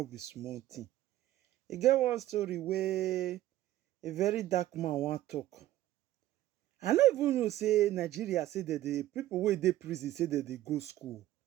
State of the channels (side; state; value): left; quieter; 14.4 dB